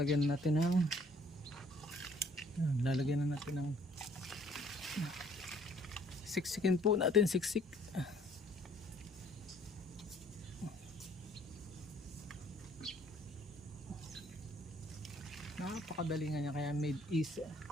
natin ng siksikin po natin, siksik. Napakadali nga niya, kaya made easy.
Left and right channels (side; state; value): both; normal; correlation 0.59